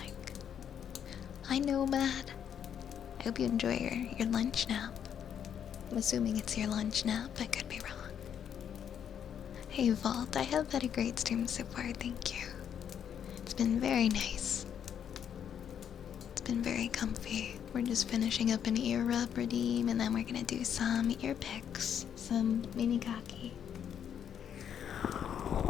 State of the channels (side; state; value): right; quieter; 8.7 dB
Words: Hi Nomad. I hope you enjoy your lunch nap. I'm assuming it's your lunch nap. I could be wrong. Hey Vault, I have had a great stream so far, thank you. It's been very nice. It's been very comfy. We're just finishing up an ear rub redeem, and then we're gonna do some ear picks, some mini kaki.